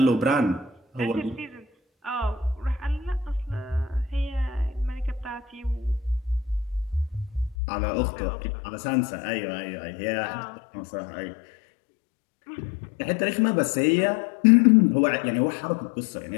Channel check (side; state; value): right; drops out; at 7.6 s